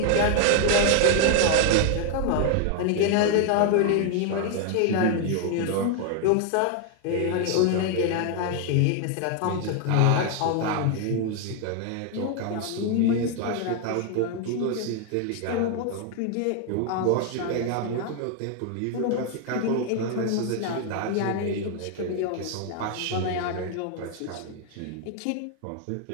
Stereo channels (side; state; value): both; different; correlation 0.00